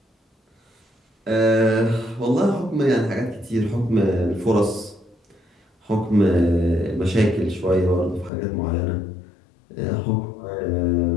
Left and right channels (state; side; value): drops out; right; at 8.3 s